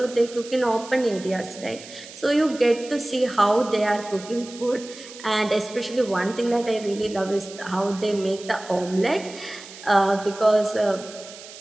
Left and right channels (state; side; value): noise; right; hiss, 16 dB below the sound